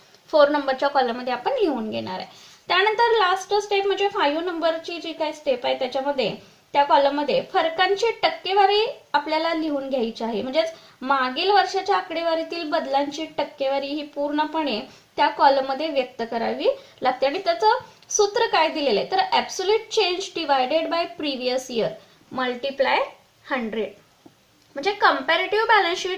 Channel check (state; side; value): identical; both; correlation 1.00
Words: 4 नंबरच्या कॉलम मध्ये आपण लिहून घेणार आहे. त्यानंतर लास्ट स्टेप म्हणजे 5 नंबरची जी काही स्टेप आहे त्याच्यामध्ये त्या कॉलम मध्ये फरकांची टक्केवारी आपल्याला लिहून घ्यायची आहे. म्हणजेच मागील वर्षाच्या आकडेवारीतील बदलांची टक्केवारी ही पूर्णपणे त्या कॉलम मध्ये व्यक्त करावी लागते. आणि त्याचं सूत्र काय दिलेलं आहे तर absolute change divided by previous year multiply 100. म्हणजे comparative balance